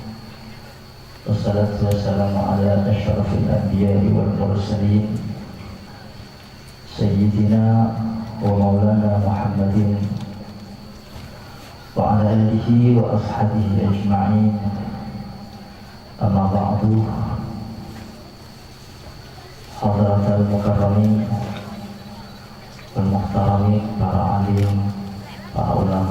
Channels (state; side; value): identical; both; correlation 1.00